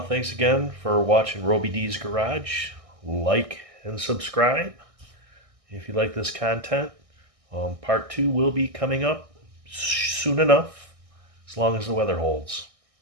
Thanks again for watching Robi Ds Garage. Like and subscribe if you like this content. Part 2 will be coming up soon enough, as long as the weather holds.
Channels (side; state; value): left; late; 1.6 ms